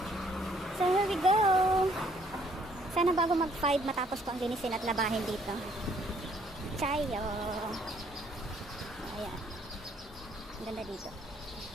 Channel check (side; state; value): both; normal; correlation 0.65